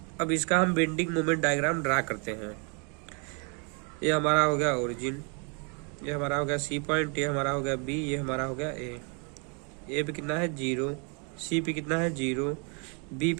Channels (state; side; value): quieter; left; 36.8 dB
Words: अब इसका हम बेंडिंग मोमेंट डायग्राम ड्रा करते हैं। ये हमारा हो गया ओरिजिन, ये हमारा हो गया सी पॉइंट, ये हमारा हो गया बी, ये हमारा हो गया ए। ए पे कितना है 0, सी पे कितना है 0, बी